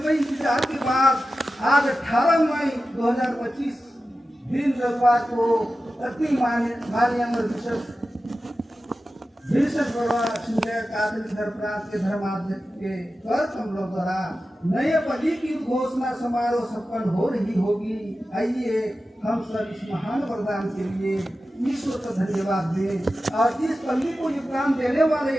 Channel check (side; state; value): both; normal; correlation 0.93